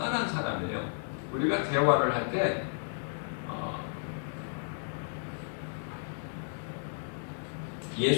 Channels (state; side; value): silent; right; digital silence